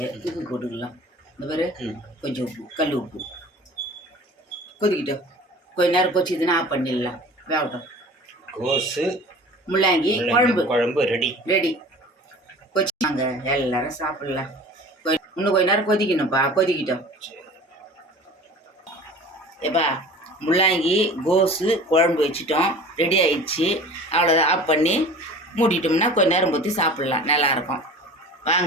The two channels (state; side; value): normal; both; correlation 0.41